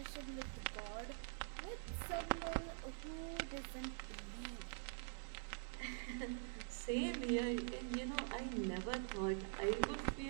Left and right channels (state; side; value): silent; left; digital silence